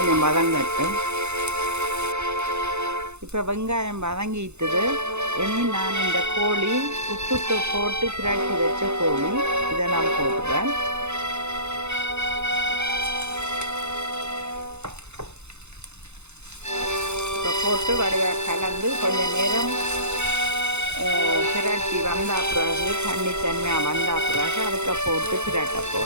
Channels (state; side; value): late; left; 0.82 ms